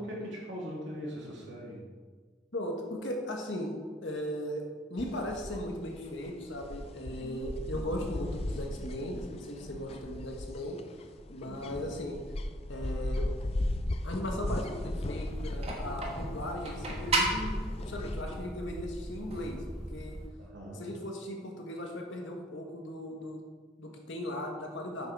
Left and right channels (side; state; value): both; normal; correlation 0.56